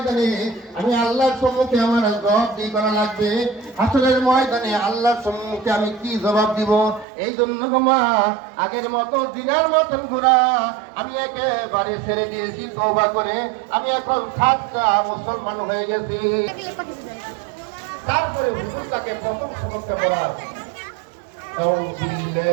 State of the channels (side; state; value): left; drops out; at 7.1 s